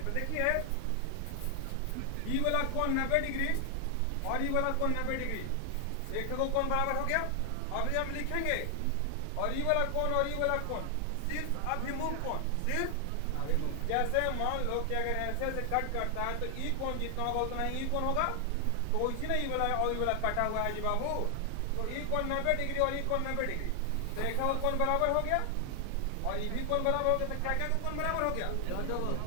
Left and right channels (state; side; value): different; both; correlation 0.00